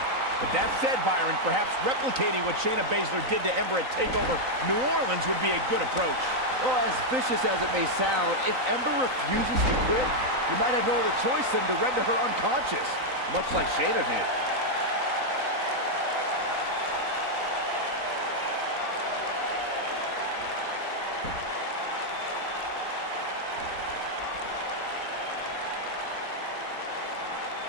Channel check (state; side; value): late; left; 3.9 ms